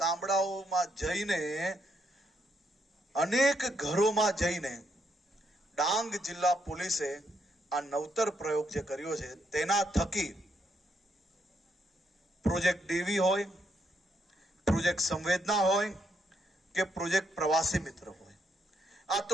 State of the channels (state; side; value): normal; both; correlation 0.77